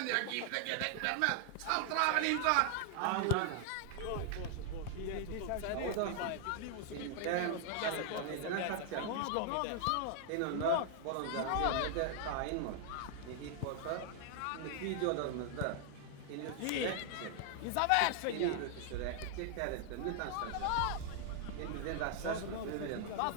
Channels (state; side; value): different; both; correlation 0.00